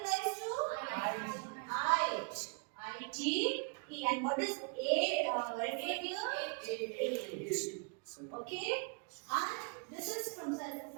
Okay? And this is from sulfur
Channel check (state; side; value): quieter; left; 36.2 dB